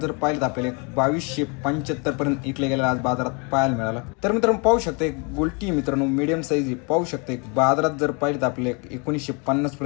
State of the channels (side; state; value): right; quieter; 32.9 dB